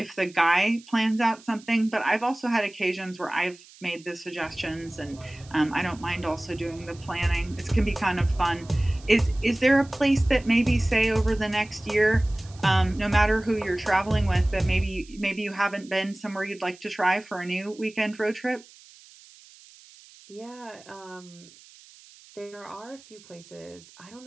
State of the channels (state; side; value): noise; right; hiss, 23 dB below the sound